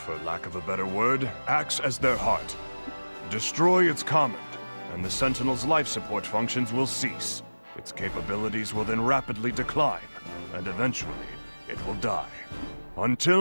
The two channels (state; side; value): inverted; both; correlation -1.00